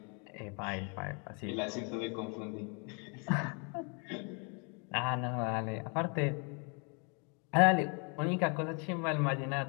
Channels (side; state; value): right; quieter; 35.5 dB